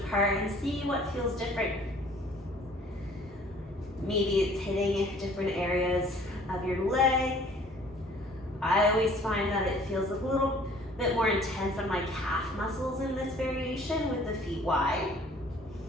and see what feels different. Maybe it's hitting different areas of your leg. I always find that it feels a little bit more intense on my calf muscles in this variation with the feet wide.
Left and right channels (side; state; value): both; normal; correlation 0.54